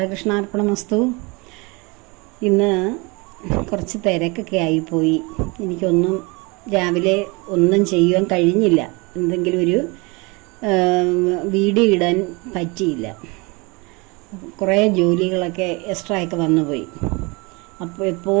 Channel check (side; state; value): left; quieter; 27.4 dB